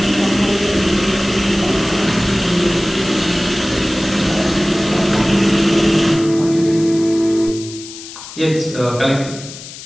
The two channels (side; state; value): left; noise; hiss, 14 dB below the sound